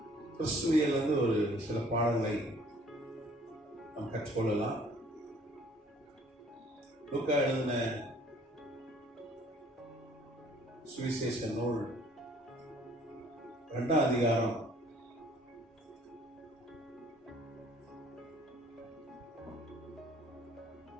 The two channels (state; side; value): normal; both; correlation 0.57